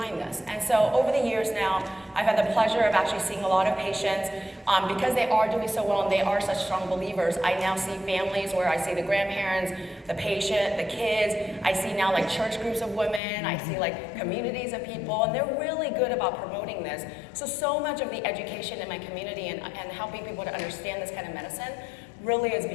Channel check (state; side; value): drops out; right; at 13.2 s